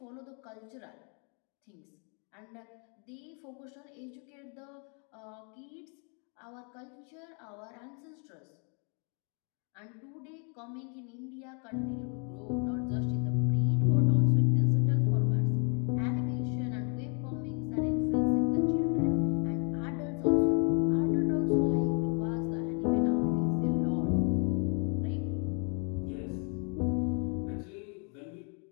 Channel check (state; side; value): quieter; right; 38.3 dB